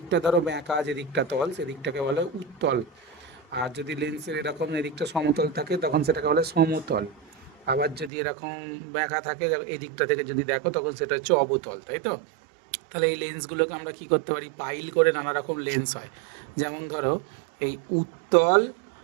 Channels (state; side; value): drops out; left; at 8.1 s